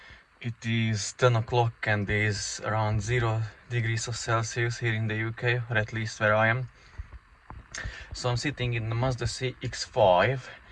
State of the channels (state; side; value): identical; both; correlation 1.00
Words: It is 10 o'clock and it is around 0 degrees of Celsius here in the UK, or at least where I am. So I'm sitting in the Mazda CX5.